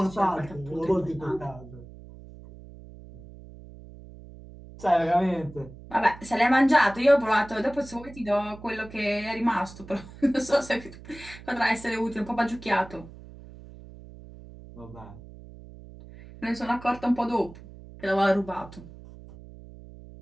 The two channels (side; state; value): right; noise; hum, 17 dB below the sound